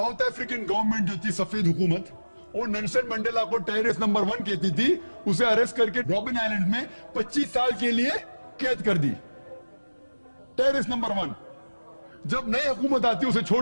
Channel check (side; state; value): both; inverted; correlation -1.00